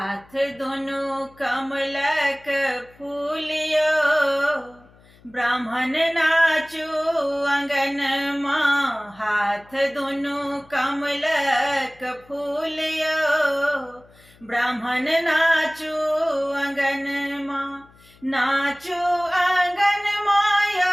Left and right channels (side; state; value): left; noise; hum, 27 dB below the sound